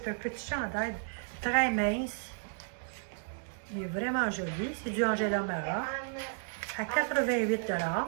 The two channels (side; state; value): left; silent; digital silence